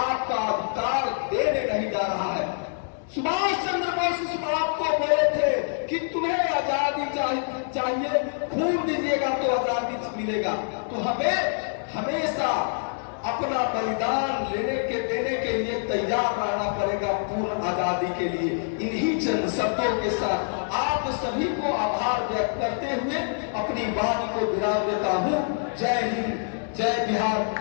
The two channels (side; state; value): right; silent; digital silence